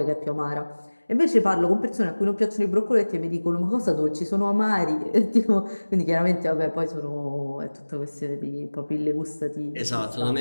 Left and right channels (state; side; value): inverted; both; correlation -1.00